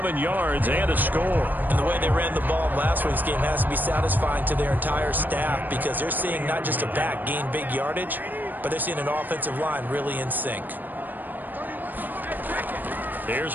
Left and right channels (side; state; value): left; late; 0.088 ms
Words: yards, and a score. And the way they ran the ball in last week's game has to be satisfying to their entire staff because they're seeing not just a back gain big yardage, but they're seeing an offensive line really in sync. Here's